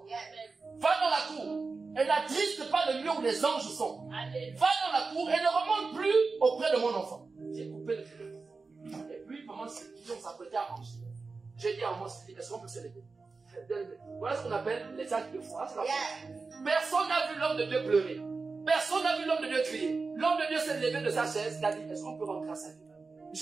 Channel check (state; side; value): quieter; left; 4.2 dB